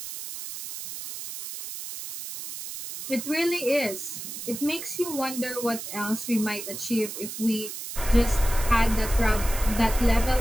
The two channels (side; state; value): right; noise; hiss, 9 dB below the sound